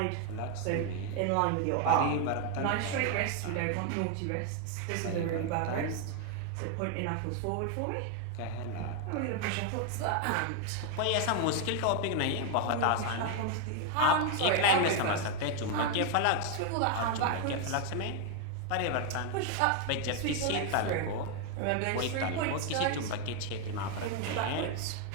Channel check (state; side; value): different; both; correlation 0.01